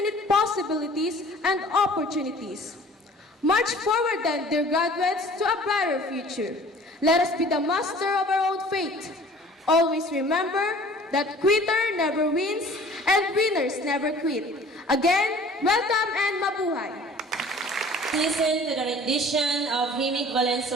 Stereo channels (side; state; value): both; normal; correlation 0.49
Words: possibilities and opportunities. March forward then, dear graduates, to a brighter future. Let us be the master of our own fate. Always remember that quitter never wins and winners never quit. Again, welcome and mabuhay. Listen to the rendition of Himig